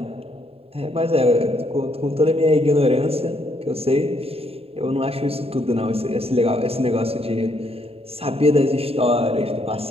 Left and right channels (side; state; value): left; late; 0.28 ms